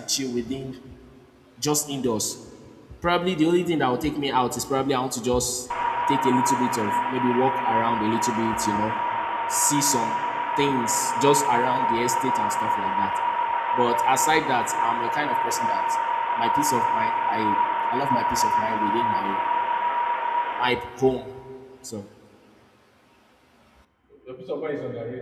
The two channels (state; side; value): identical; both; correlation 1.00